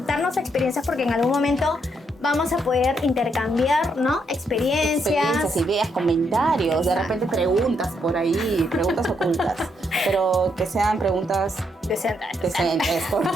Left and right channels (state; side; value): normal; both; correlation 0.77